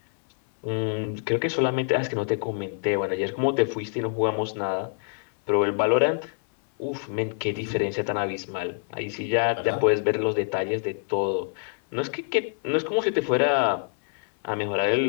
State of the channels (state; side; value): silent; right; 61 dB below the other